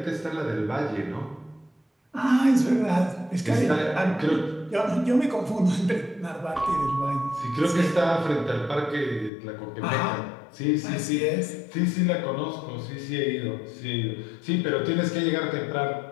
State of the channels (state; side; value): drops out; right; at 9.3 s